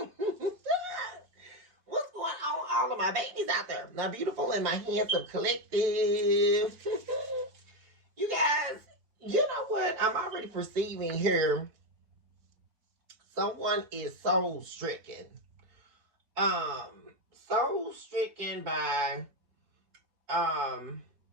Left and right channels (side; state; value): left; late; 5.1 ms